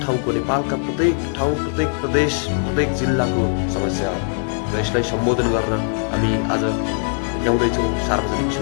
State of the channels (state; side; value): silent; right; 57 dB below the other